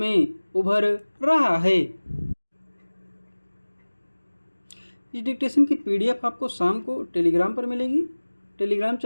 उभर रहा है। इस डिक्टेशन की PDF आपको शाम को टेलीग्राम पर मिलेगी। टेलीग्राम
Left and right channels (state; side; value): inverted; both; correlation -1.00